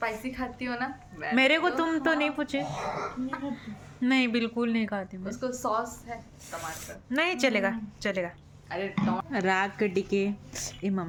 खाती हो ना मेरे को तुम तो नहीं पूछे नहीं बिल्कुल नहीं खाती मैं उसको सॉस है टमाटर नहीं चलेगा चलेगा अरे राग के टिके ए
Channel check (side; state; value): both; identical; correlation 1.00